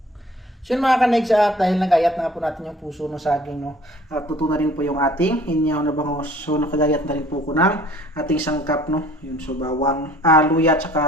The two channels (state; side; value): normal; both; correlation 0.53